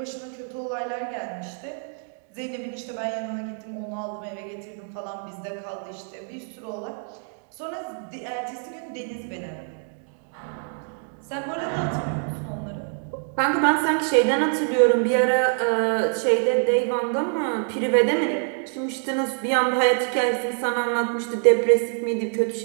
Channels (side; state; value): left; silent; 59 dB below the other